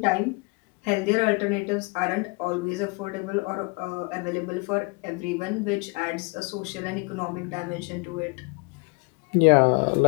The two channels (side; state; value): right; quieter; 30.2 dB